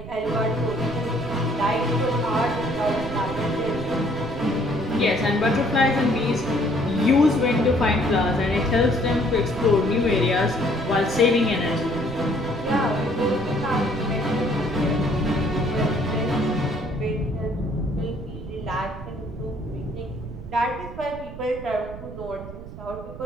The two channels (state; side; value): noise; right; rumble, 12 dB below the sound